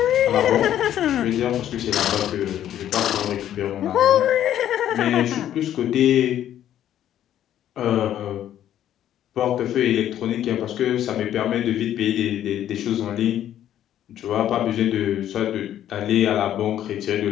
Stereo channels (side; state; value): right; quieter; 11.3 dB